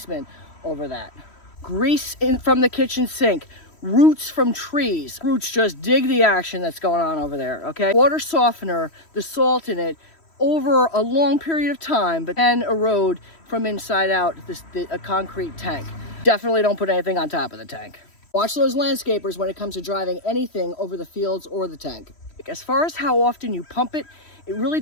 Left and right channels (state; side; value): late; right; 3.1 ms